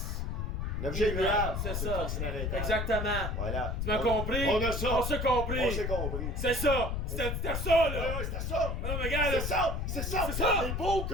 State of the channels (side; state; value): left; noise; rumble, 1 dB below the sound